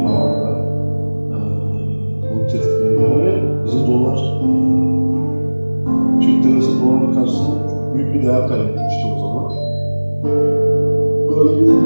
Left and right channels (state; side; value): inverted; both; correlation -1.00